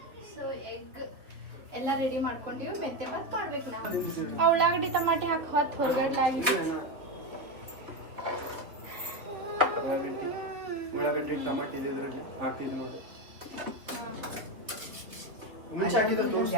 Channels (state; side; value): late; left; 3.1 ms